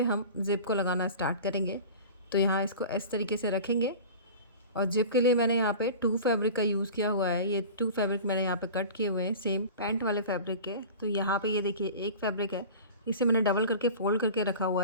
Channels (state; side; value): inverted; both; correlation -0.37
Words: हम ज़िप को लगाना स्टार्ट करेंगे। तो यहाँ इसको इस तरीके से रखेंगे, और जिप के लिए मैंने यहाँ पे 2 फैब्रिक का यूज़ किया हुआ है। ये 2 फैब्रिक मैंने यहाँ पे कट किए हुए हैं सेम पैंट वाले फैब्रिक के। तो यहाँ पे ये देखिए एक फैब्रिक है, इसे मैंने डबल करके फ़ोल्ड करके रखा